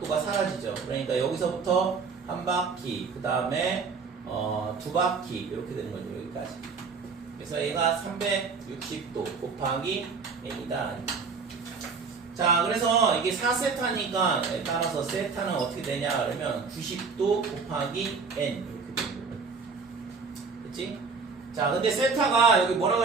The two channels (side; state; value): left; quieter; 5.0 dB